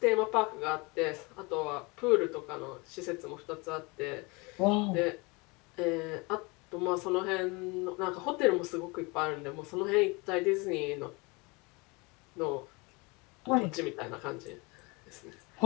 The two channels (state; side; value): quieter; right; 27.0 dB